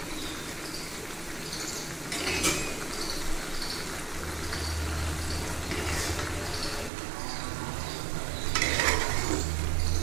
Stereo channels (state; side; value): drops out; left; at 6.9 s